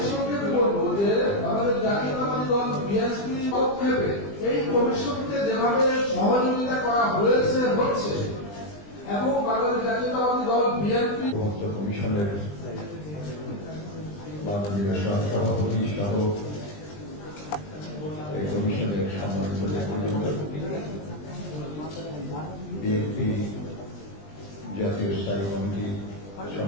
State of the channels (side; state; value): right; late; 20 ms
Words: সংক্ষেপে বলবো যে আমাদের জাতীয়তাবাদী দল বিএনপি পদক্ষেপে এই কমিশনকে যেভাবে সহযোগিতা করা হয়েছে হচ্ছে এবং বাংলাদেশ জাতীয়তাবাদী দল বিএনপি কমিশনের মাননীয় সভাপতি সহ এই কমিশনের সম্মানিত নেতৃবৃন্দ, বিএনপি জাতীয় স্থায়ী কমিটি